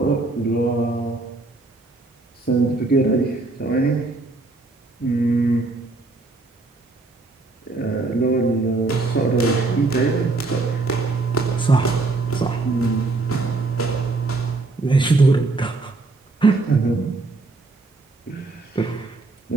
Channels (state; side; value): quieter; left; 3.4 dB